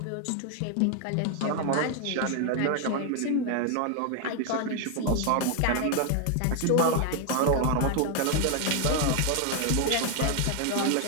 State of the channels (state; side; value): different; both; correlation 0.00